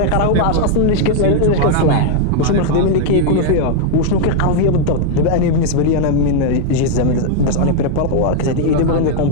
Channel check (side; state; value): both; different; correlation 0.00